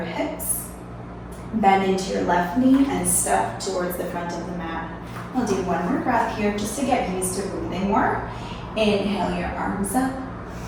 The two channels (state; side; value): identical; both; correlation 1.00